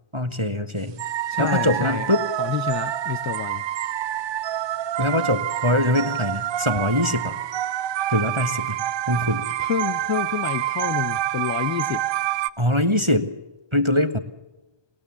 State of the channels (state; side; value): late; left; 1.4 ms